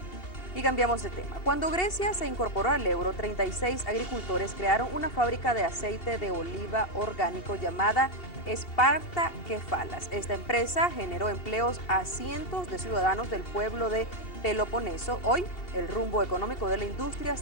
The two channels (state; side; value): late; right; 2.8 ms